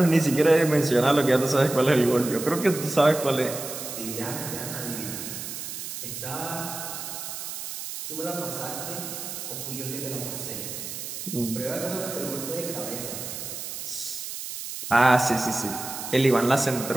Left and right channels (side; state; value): right; noise; hiss, 8 dB below the sound